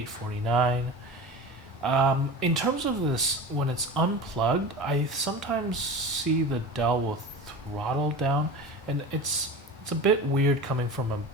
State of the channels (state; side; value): normal; both; correlation 0.31